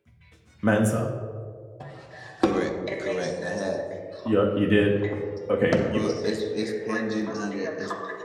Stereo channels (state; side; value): identical; both; correlation 1.00